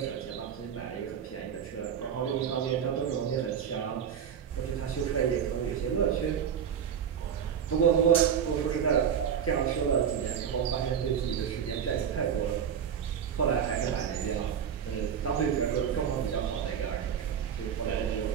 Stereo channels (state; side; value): quieter; left; 8.0 dB